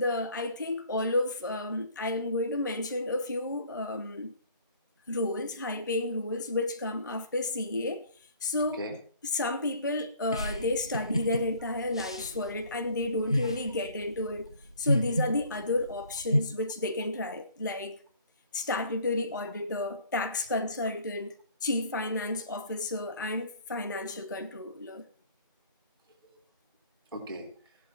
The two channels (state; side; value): inverted; both; correlation -0.55